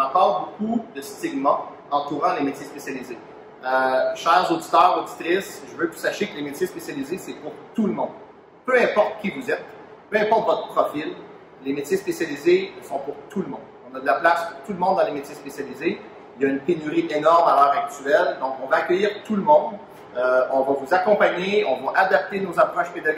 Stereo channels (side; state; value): both; identical; correlation 1.00